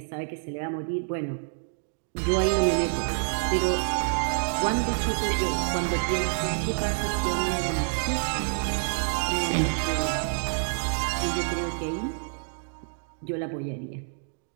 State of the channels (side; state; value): left; silent; digital silence